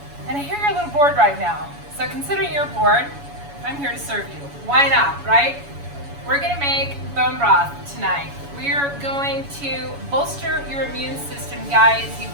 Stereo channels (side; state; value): left; late; 7.1 ms